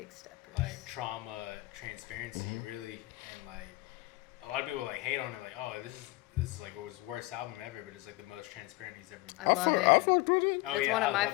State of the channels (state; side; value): quieter; right; 20.8 dB